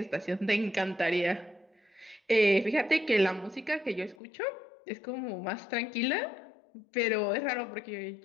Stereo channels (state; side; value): drops out; right; at 4.2 s